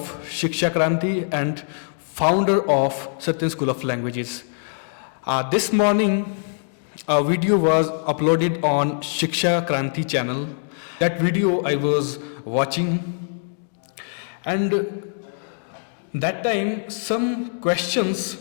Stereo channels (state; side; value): silent; right; digital silence